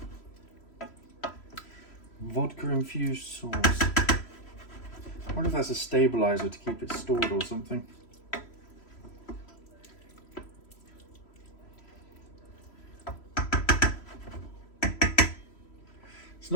Vodka infused sauce. I wonder if that's a stabilizer to keep it stored or something. It's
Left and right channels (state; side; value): late; right; 3.1 ms